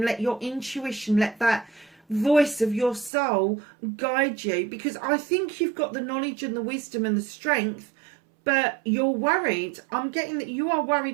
let your intuition, let that voice of your soul guide you. Because I think you've got the knowledge and the wisdom and the strength, but you're worried. I'm getting that you are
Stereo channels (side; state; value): left; drops out; at 3.1 s